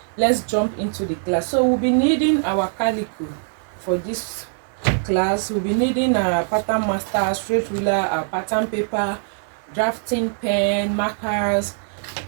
let's jump into the class. So we'll be needing our calico for this class. We'll be needing our pattern master, straight ruler, our pattern paper, drafting pen, markers,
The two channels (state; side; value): silent; left; digital silence